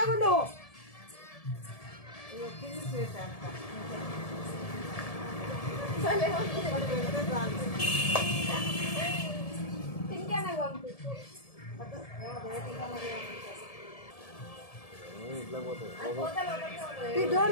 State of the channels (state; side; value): late; right; 1.7 ms